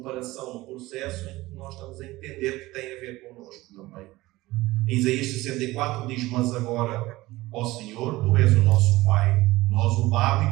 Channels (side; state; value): left; quieter; 18.9 dB